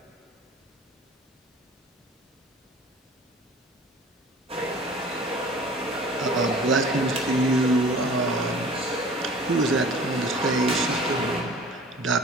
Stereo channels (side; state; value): both; normal; correlation 0.46